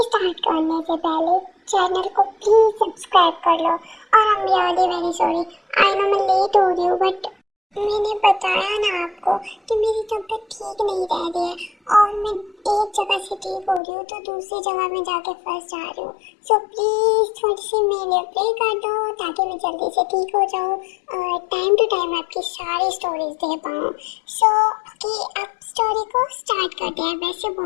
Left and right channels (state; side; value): drops out; right; at 13.8 s